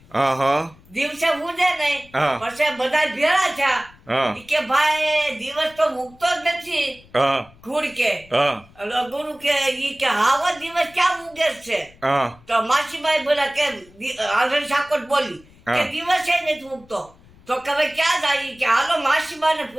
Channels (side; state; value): left; noise; rumble, 26 dB below the sound